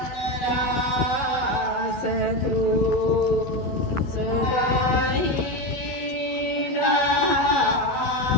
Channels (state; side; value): late; right; 12 ms